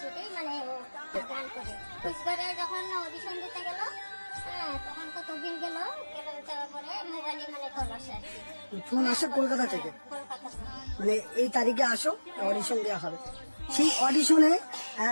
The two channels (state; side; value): inverted; both; correlation -1.00